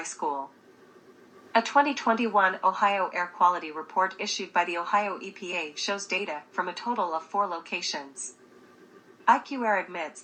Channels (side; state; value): both; identical; correlation 1.00